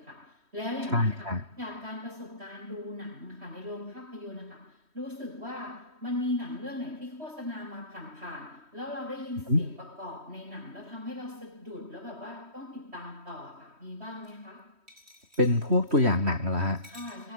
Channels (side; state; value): left; late; 3.1 ms